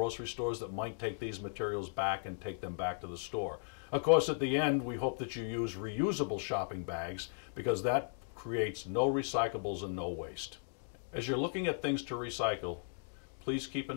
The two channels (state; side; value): silent; right; digital silence